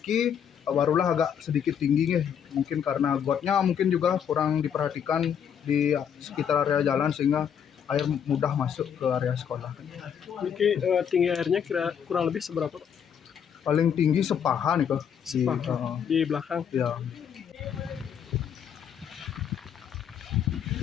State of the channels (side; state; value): right; quieter; 8.2 dB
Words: barulah agak sedikit tinggi mungkin karena gotnya mungkin juga kurang diperhatikan di sekitar area jalan sehingga air mudah masuk ke area sekolah. Niki tinggi airnya kurang lebih seberapa, Pak? Paling tinggi sepaha nih kok di belakang. Ya.